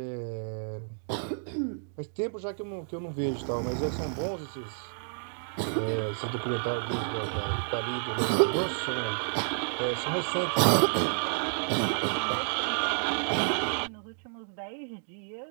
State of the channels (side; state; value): left; silent; digital silence